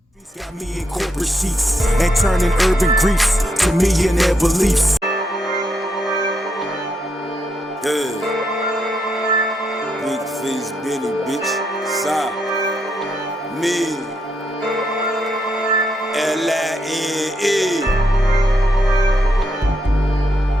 Got me in corporate seats and turning urban griefs to millionaire beliefs. Yeah. Big face Benny, bitch. Side. Me. L-I-N-E.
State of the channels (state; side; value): normal; both; correlation 0.79